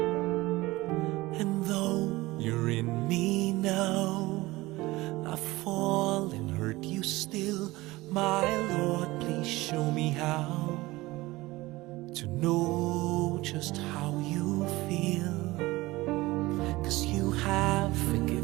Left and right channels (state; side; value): quieter; left; 19.9 dB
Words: And though you're in me now, I fall and hurt you still. My Lord, please show me how to know just how you feel. 'Cause you have